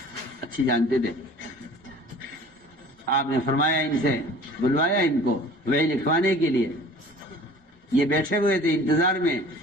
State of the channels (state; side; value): normal; both; correlation 0.46